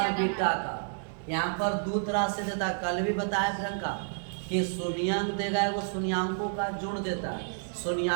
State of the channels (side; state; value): left; silent; digital silence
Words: बीटा का। यहाँ पर दो तरह से देता है, कल भी बताया प्रियंका कि शून्यंक देगा वो शून्यांकों का जोड़ देता है,